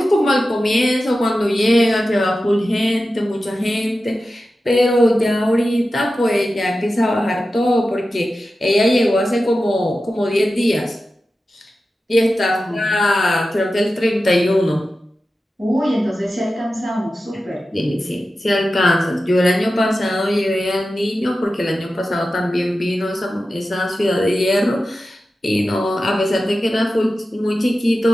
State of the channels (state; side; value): normal; both; correlation 0.93